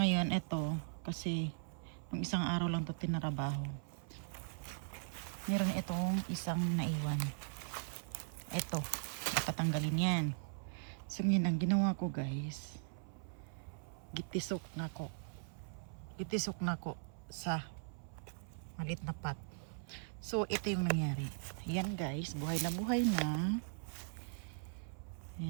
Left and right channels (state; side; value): silent; left; 51 dB below the other